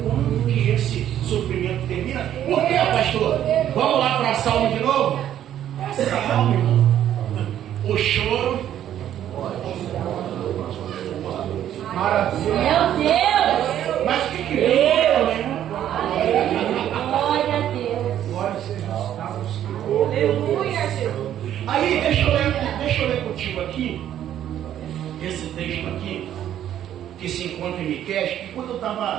quando que esse sofrimento termina? Por quê, pastor? Vamos lá para a Salmo de novo? É Salmo, irmão. O choro. Maravilha. Meu Deus! Mas o que é? Glória aqui, que se encontra em Miqueias, que quando eu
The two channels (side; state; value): left; quieter; 11.0 dB